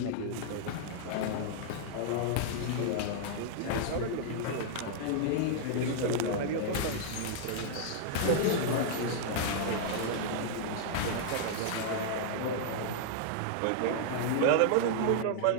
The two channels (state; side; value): different; both; correlation -0.01